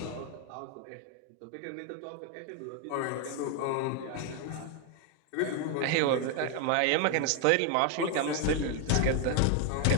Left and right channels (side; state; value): both; different; correlation 0.01